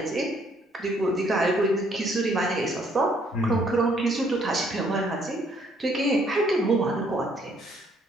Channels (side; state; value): both; normal; correlation 0.66